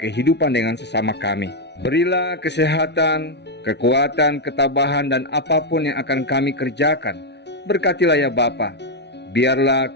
dengan sesama kami. Berilah kesehatan, kekuatan, ketabahan, dan apapun yang akan kami kerjakan. Berkatilah ya Bapa. Biarlah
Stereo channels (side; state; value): right; late; 0.50 ms